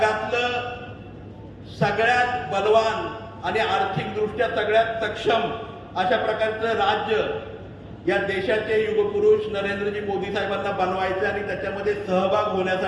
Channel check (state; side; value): identical; both; correlation 1.00